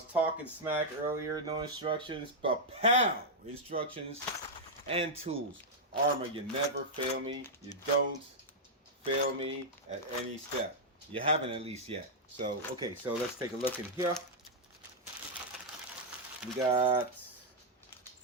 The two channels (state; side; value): normal; both; correlation -0.05